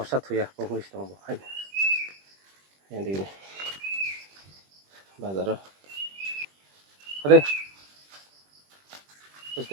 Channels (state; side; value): late; left; 21 ms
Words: satu ya pengulis tong hai yang di ini bazar ada